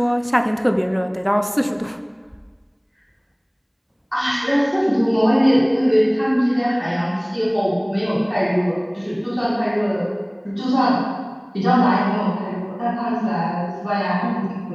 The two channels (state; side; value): identical; both; correlation 1.00